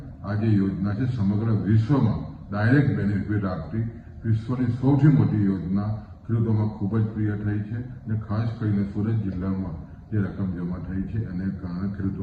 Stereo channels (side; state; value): both; identical; correlation 1.00